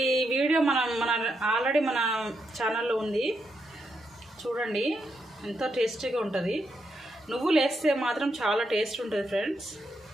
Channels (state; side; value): normal; both; correlation 0.81